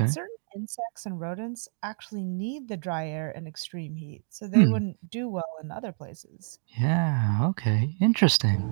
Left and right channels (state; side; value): silent; left; 57 dB below the other